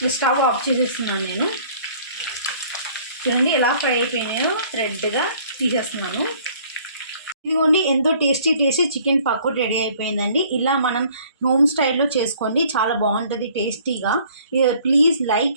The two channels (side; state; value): both; inverted; correlation -0.56